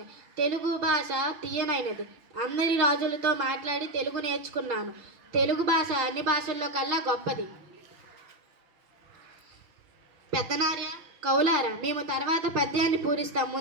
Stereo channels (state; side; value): late; left; 5.8 ms